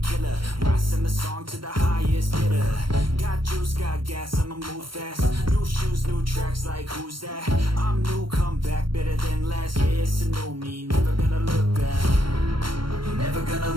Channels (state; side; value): late; left; 0.73 ms